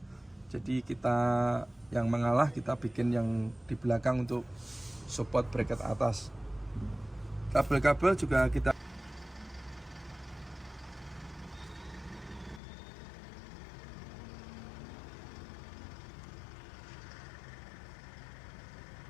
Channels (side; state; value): right; drops out; at 12.6 s